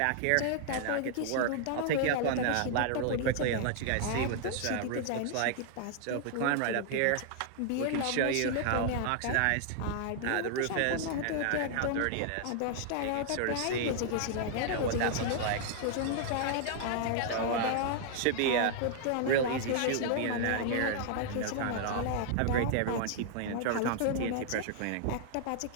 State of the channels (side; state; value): both; different; correlation 0.00